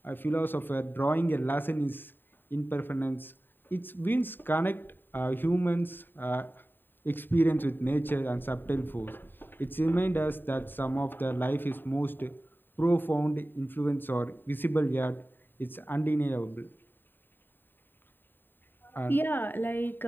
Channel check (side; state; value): right; late; 0.094 ms